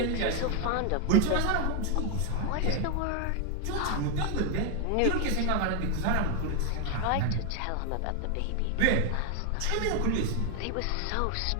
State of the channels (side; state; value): both; different; correlation 0.01